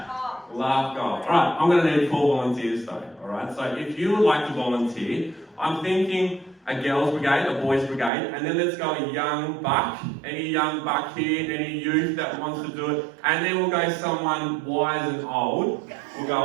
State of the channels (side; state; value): left; drops out; at 8.1 s